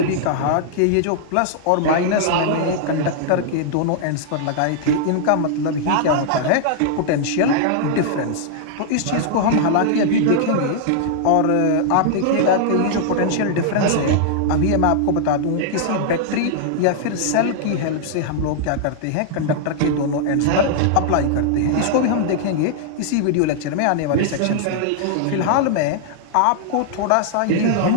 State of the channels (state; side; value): different; both; correlation -0.01